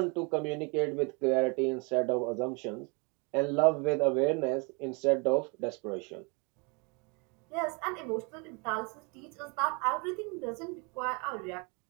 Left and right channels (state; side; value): quieter; left; 32.0 dB